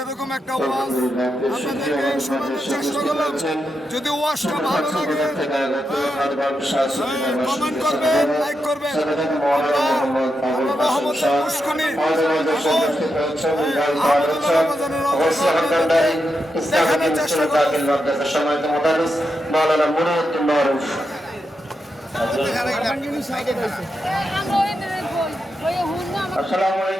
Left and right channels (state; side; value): normal; both; correlation 0.86